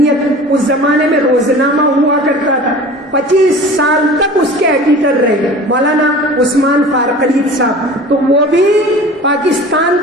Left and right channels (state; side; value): normal; both; correlation 0.41